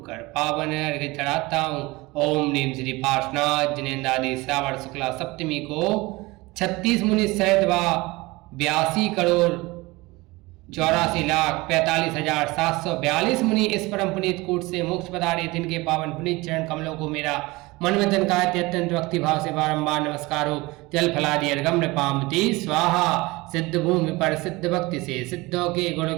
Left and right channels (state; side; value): quieter; left; 22.3 dB